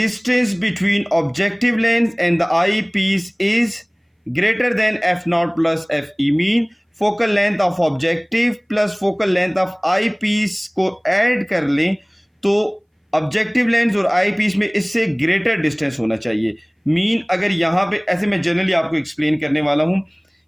between objective lens and the eyepiece is greater than f naught plus f e. Mean focal length of objective plus focal length of eyepiece को ऐड कर लें तो ऑब्जेक्टिव लेंस और आई piece में इससे greater distance होना चाहिए। Mean अगर यहाँ पे ऐसे मैं जनरली आपको एक्सप्लेन करने वाला हूँ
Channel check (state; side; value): identical; both; correlation 1.00